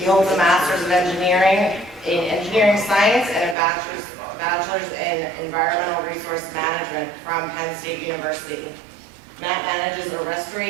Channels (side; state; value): left; drops out; at 3.6 s